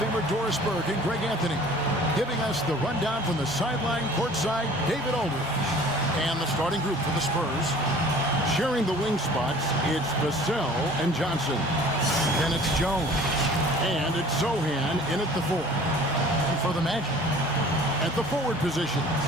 Doris Burke and Greg Anthony giving us the rundown from the sideline courtside, David Aldridge. And the starting group for the Spurs. Sharing the wing spots, it's Vassell and Johnson. Then it's Jones. And it's Sochan in at the 4. And for the Magic, at the forward positions,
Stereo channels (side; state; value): both; normal; correlation 0.48